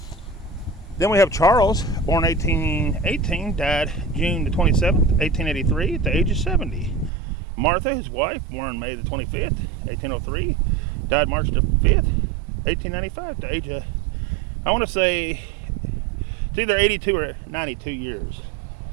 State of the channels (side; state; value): left; drops out; at 7.1 s